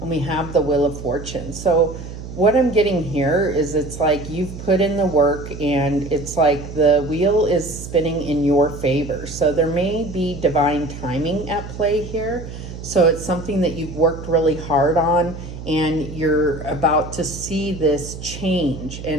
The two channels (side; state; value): right; noise; hum, 11 dB below the sound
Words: And we have the Wheel of Fortune. So what I'm getting here is it's like you've put in the work, and it's like the wheel is spinning in your favor. So there may be divine timing at play here. So it's something that you've worked really hard on, and you're about to see this change.